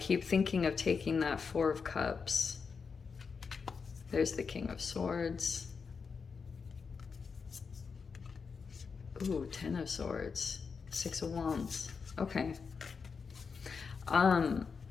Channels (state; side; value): quieter; right; 5.4 dB